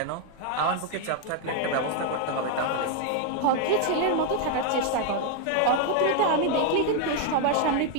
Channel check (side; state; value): both; different; correlation 0.00